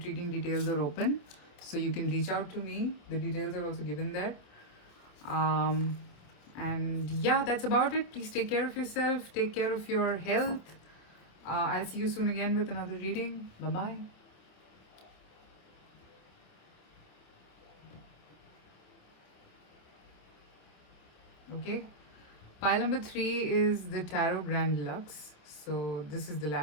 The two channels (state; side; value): late; right; 27 ms